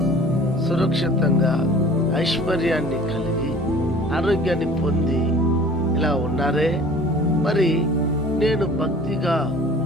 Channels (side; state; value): both; normal; correlation 0.47